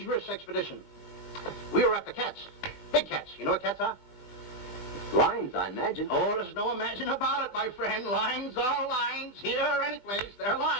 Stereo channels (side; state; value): right; late; 20 ms